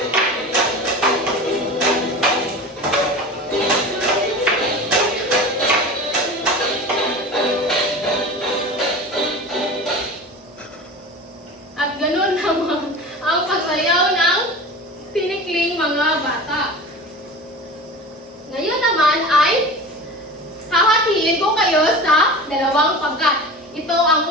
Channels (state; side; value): normal; both; correlation 0.34